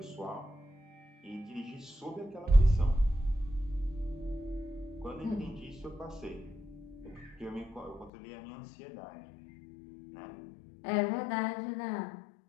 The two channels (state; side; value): drops out; right; at 8.1 s